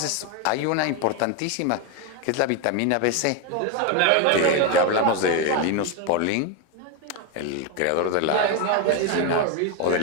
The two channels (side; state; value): both; different; correlation 0.02